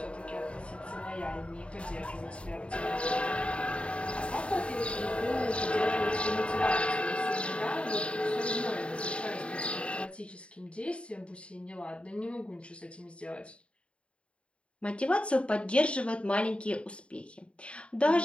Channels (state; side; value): late; right; 0.059 ms